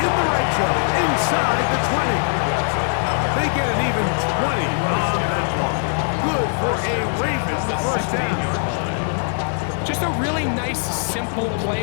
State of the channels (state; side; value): silent; right; 65 dB below the other